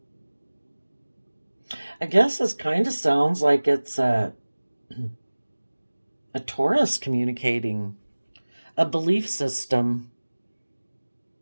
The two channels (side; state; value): both; inverted; correlation -1.00